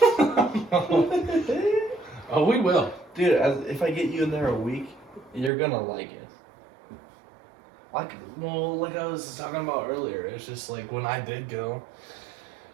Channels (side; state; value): left; drops out; at 5.5 s